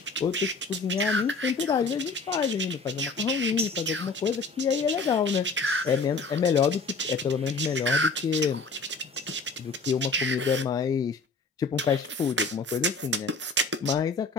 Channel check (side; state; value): right; quieter; 3.9 dB